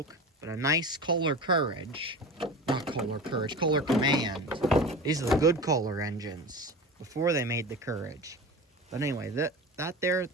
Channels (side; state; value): both; normal; correlation 0.31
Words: but a nice Kohler Courage, not Kohler Courage, Kohler Command. These are the good Kohler engines before they made the Courage. But anyway, that there